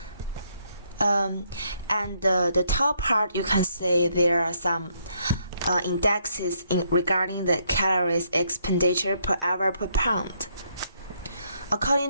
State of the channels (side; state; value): both; inverted; correlation -0.72